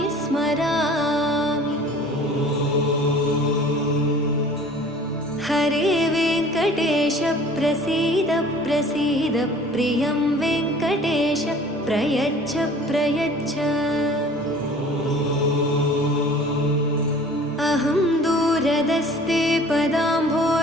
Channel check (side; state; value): both; normal; correlation 0.48